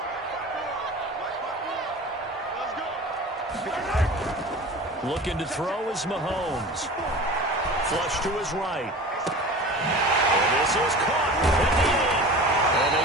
Looking to throw is Mahomes. Flush to his right. And this is caught at the end. And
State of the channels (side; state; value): both; normal; correlation 0.37